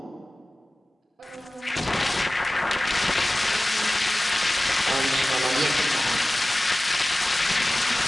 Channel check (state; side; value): normal; both; correlation 0.97